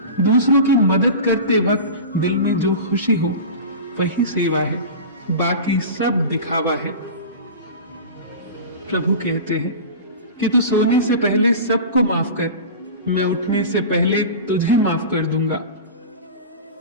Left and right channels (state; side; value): inverted; both; correlation -0.31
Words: दूसरों की मदद करते वक्त दिल में जो खुशी हो वही सेवा है, बाकी सब दिखावा है। प्रभु कहते हैं कि तू सोने से पहले सबको माफ कर, मैं उठने से पहले तुझे माफ कर दूंगा।